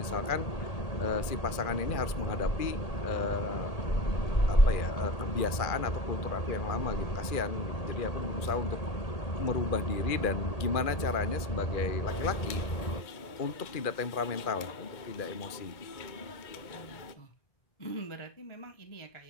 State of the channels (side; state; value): right; late; 2.3 ms